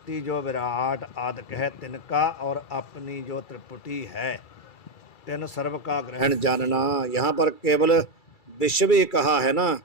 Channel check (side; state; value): right; late; 2.3 ms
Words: जो विराट आदिक है तिनका और अपनी जो त्रिपुटी है तिन सर्व का ग्रहण जानना। यहाँ पर केवल विश्व ही कहा है ना,